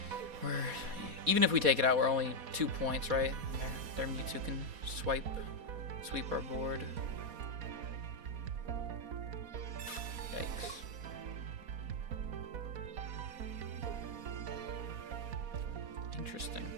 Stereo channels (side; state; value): left; late; 4.1 ms